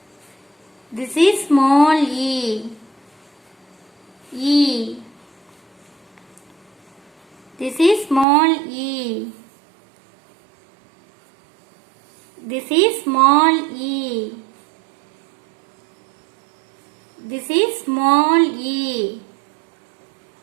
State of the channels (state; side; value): drops out; left; at 8.2 s